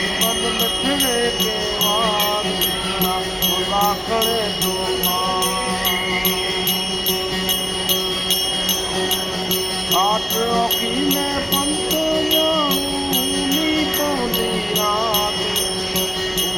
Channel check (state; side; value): identical; both; correlation 1.00